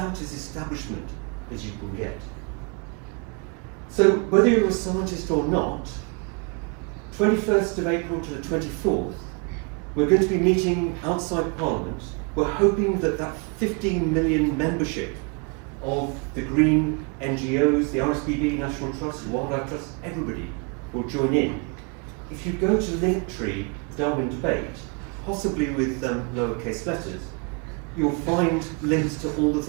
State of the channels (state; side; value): quieter; left; 33.9 dB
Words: as establishment as you can get. So whether you're a scientist or not, 21st of April to the 24th, we're going to be meeting outside Parliament. We're hoping that that 15 million membership of the green NGOs, the RSPB, National Trust, Wildlife Trust, everybody will join in. If you go to Linktree Darwin Debate, possibly with lowercase letters, you'll find links to all the